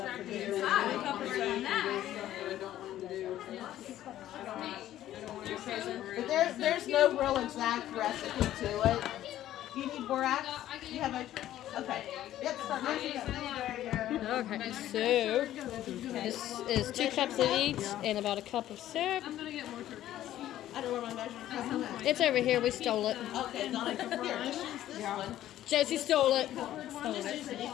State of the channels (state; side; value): quieter; right; 13.0 dB